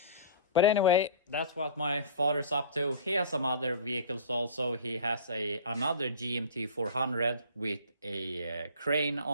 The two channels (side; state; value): both; inverted; correlation -0.40